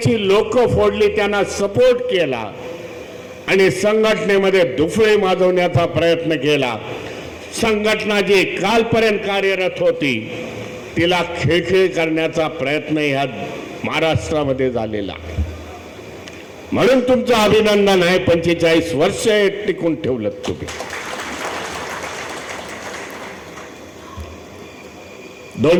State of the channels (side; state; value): both; identical; correlation 1.00